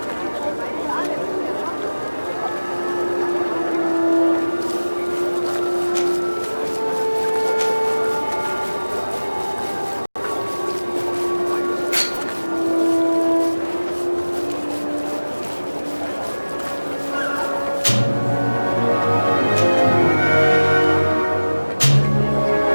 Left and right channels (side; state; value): both; inverted; correlation -1.00